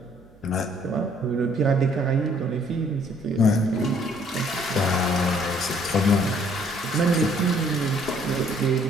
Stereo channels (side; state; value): right; noise; hum, 27 dB below the sound